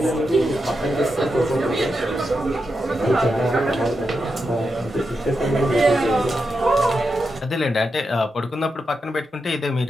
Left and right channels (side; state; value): both; normal; correlation 0.87